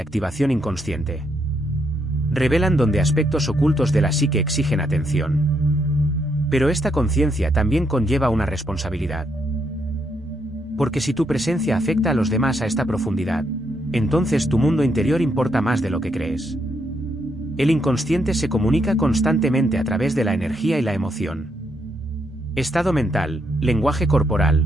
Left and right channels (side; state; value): both; normal; correlation 0.77